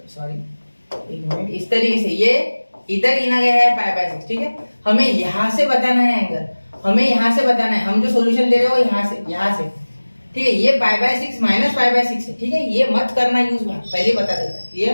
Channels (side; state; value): both; inverted; correlation -1.00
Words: सॉरी एक मिनट, इस तरीके से ये इधर गिना गया है π/6, ठीक है। हमें यहाँ से बताना है एंगल, हमें यहाँ से बताना है, हम जो सोल्यूशन दे रहे हो यहाँ से, ठीक है। ये π/6 माइनस π/6 है, ठीक है, ये मत करना यूज, पहले बता देता है,